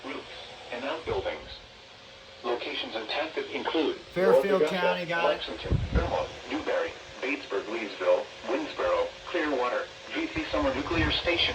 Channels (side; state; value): both; identical; correlation 1.00